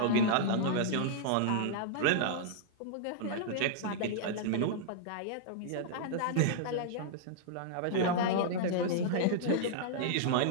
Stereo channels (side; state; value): both; different; correlation -0.02